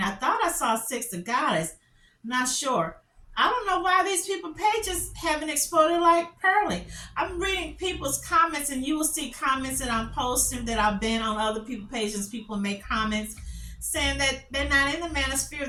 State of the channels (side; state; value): both; identical; correlation 1.00